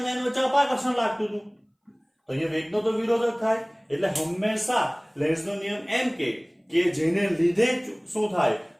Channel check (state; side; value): identical; both; correlation 1.00